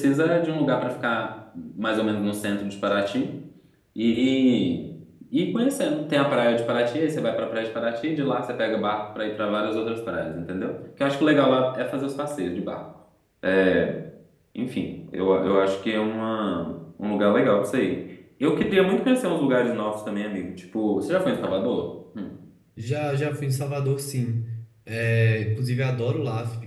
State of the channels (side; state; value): both; identical; correlation 1.00